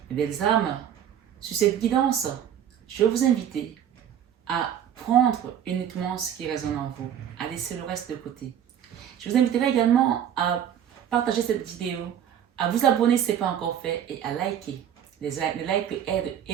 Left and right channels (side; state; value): left; quieter; 9.6 dB